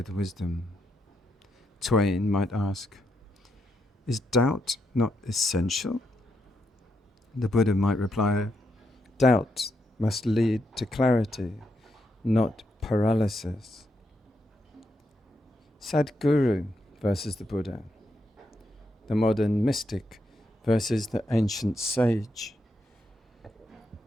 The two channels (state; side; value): normal; both; correlation 0.81